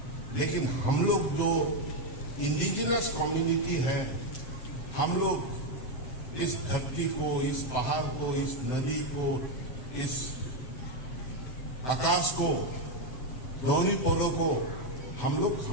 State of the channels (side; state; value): right; late; 7.6 ms